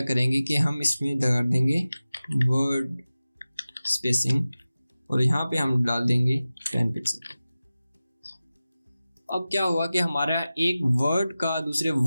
करेंगे कि हम इसमें लगा देंगे वर्ड स्पेसिंग और यहाँ पे हम डाल देंगे 10 पिक्सल। अब क्या हुआ कि हमारा एक वर्ड का दूसरे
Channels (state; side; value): inverted; both; correlation -0.96